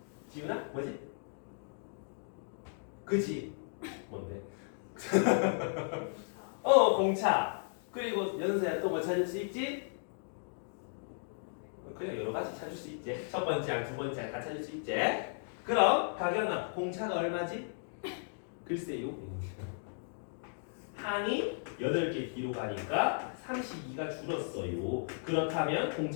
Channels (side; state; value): right; silent; digital silence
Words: 지훈아? 뭐지? 그지? 뭔데? 공차. 그리고 연서야 또 뭐 찾을 수 있지? 그냥 여러 가지 찾을 수 있지. 첫 번째랑 두 번째랑 다 찾을 수 있지. 그럼 가경아 공차가 얼마지? 글쎄요. 항이 8개 뒤로 가니까 32가 줄었어요. 그렇다면